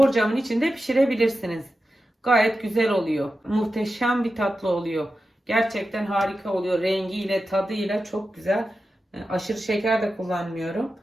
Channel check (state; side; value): normal; both; correlation 0.92